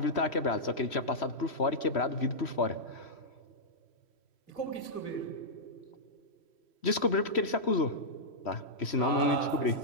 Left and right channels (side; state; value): right; late; 3.1 ms